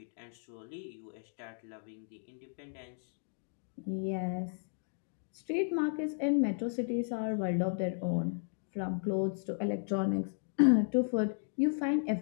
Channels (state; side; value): silent; right; digital silence